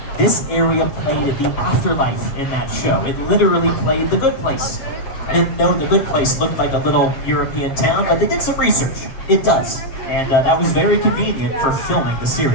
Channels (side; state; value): right; late; 7.5 ms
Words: This area played at the afterlife in that show. It literally played The Good Place. I didn't know The Good Place looked like a little European town, but they did some research. It does. And that was very convenient for filming the